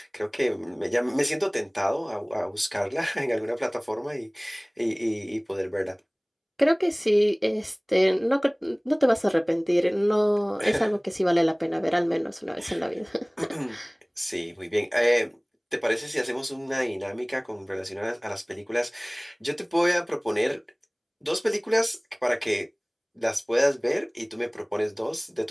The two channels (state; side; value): identical; both; correlation 1.00